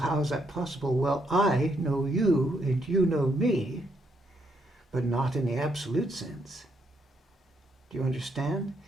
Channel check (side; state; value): both; normal; correlation 0.75